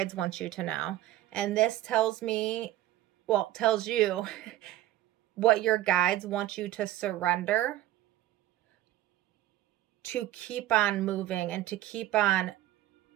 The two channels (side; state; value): left; quieter; 14.4 dB